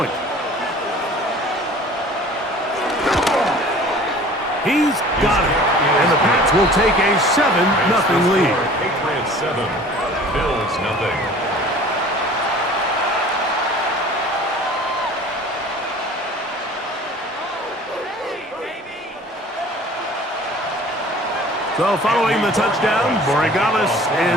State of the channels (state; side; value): normal; both; correlation 0.46